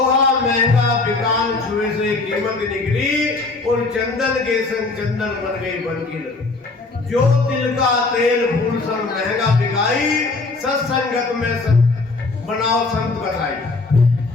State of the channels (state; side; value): quieter; right; 3.6 dB